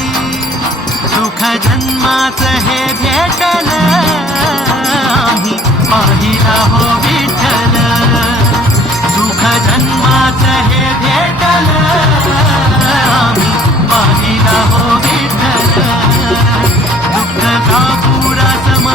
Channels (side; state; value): both; normal; correlation 0.55